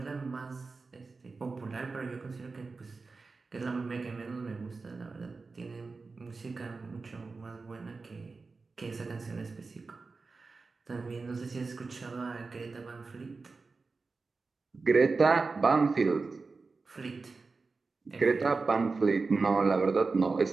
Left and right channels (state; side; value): quieter; left; 4.1 dB